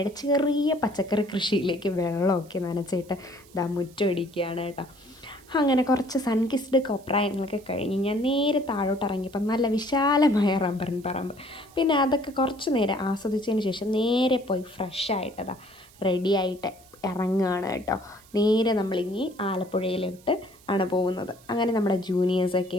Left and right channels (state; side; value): noise; right; hiss, 26 dB below the sound